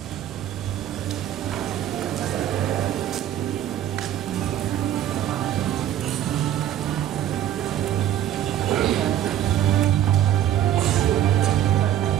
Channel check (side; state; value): left; quieter; 11.4 dB